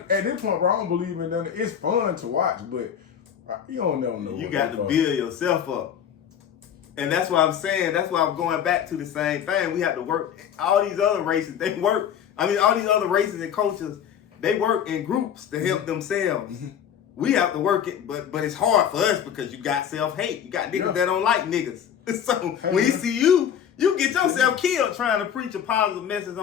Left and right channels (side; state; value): right; quieter; 8.9 dB